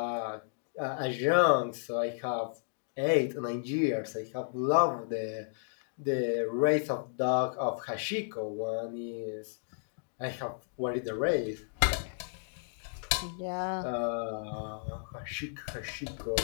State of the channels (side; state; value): right; silent; digital silence